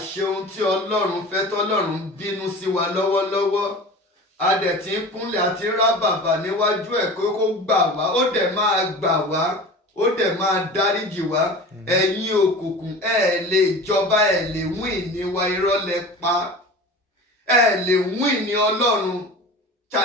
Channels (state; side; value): normal; both; correlation 0.36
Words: ṣe ohun tí Ọlọ́run fẹ́ tọ́lọ́run bínú sí wa lọ́wọ́lọ́wọ́. A dẹ̀ ti ń kúnlẹ̀ àti rá bàbà níwájú ẹ̀ kó gbà wá. Ó dẹ̀ máa gbà wá. Ó dẹ̀ máa dáríjì wá. Ẹ̀yin òkùnkùn lè jọba lè wín ní wa, irọ́ lẹ pa. Lè wín ní Ọlọ́run.